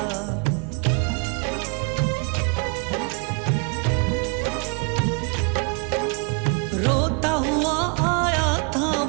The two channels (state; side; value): quieter; left; 35.1 dB